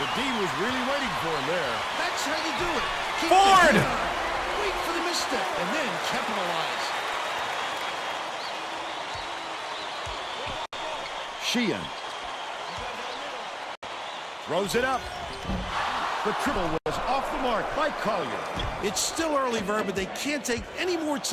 D was really waiting for him there. That's how you do it. Keep Ford! the wait for the misstep, and then capitalize. Sheehan throws it up. The triple was off the mark by Collier. It's still early, Verb, but they can't take any more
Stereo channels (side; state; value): both; identical; correlation 1.00